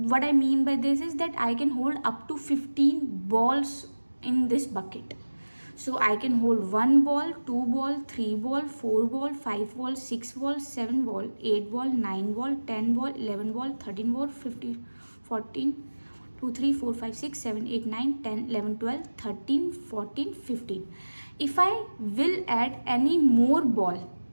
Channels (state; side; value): inverted; both; correlation -1.00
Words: what I mean by this is that I can hold up to 15 balls in this bucket. So I can hold 1 ball, 2 ball, 3 ball, 4 ball, 5 ball, 6 ball, 7 ball, 8 ball, 9 ball, 10 ball, 11 ball, 13 ball, 15, 14, 2, 3, 4, 5, 6, 7, 8, 9, 10, 11, 12, 13, 14, 15. If I will add any more ball